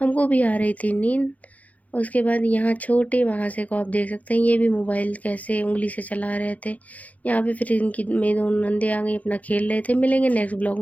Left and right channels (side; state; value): right; late; 0.073 ms